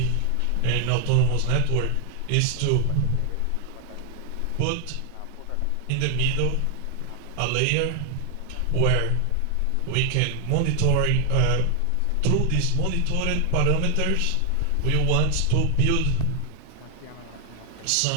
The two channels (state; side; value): different; both; correlation 0.00